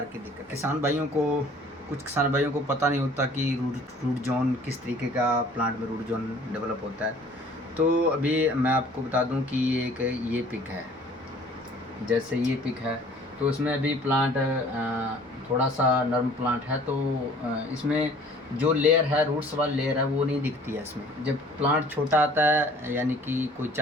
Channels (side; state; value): both; normal; correlation 0.52